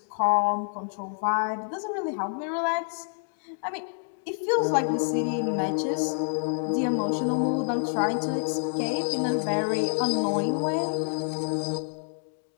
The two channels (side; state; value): right; silent; digital silence